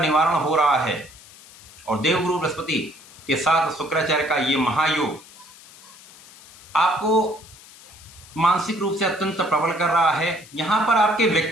हो रहा है। और देवगुरु बृहस्पति के साथ शुक्राचार्य का ये महायोग आपको मानसिक रूप से अत्यंत प्रबल कर रहा है। यहाँ पर आपके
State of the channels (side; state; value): left; noise; hiss, 21 dB below the sound